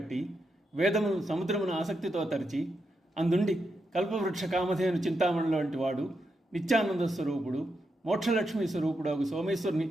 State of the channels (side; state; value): both; normal; correlation 0.84